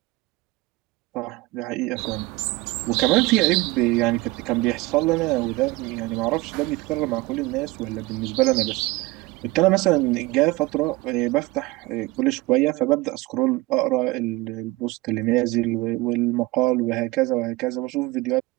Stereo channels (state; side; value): quieter; left; 20.8 dB